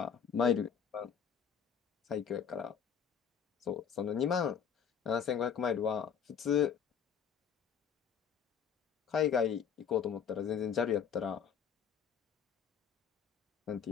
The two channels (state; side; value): quieter; right; 7.6 dB